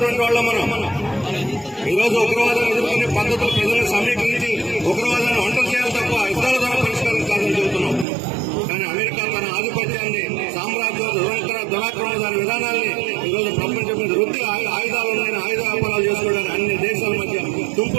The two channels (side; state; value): left; drops out; at 8.1 s